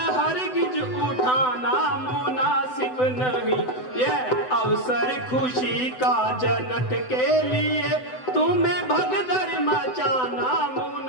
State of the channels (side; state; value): right; late; 7.9 ms